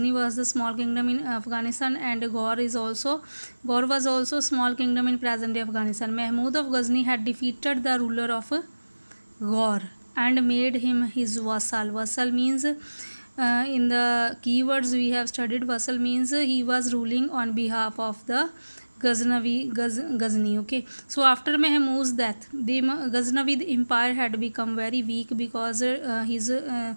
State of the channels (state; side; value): inverted; both; correlation -1.00